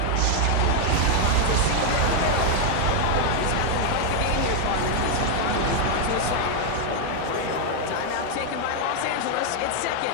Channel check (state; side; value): different; both; correlation 0.00